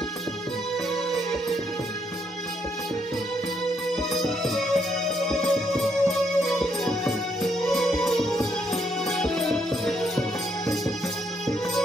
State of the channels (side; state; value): both; normal; correlation 0.74